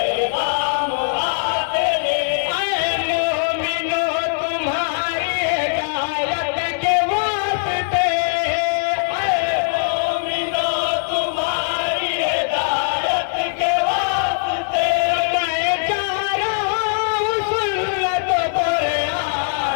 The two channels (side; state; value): right; silent; digital silence